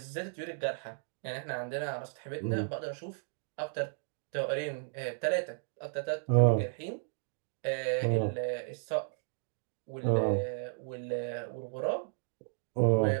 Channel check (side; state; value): left; silent; digital silence